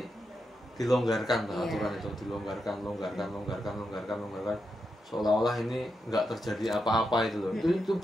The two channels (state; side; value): normal; both; correlation 0.85